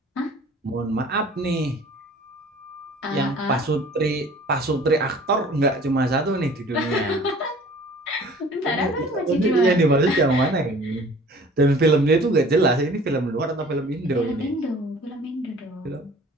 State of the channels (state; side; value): normal; both; correlation 0.48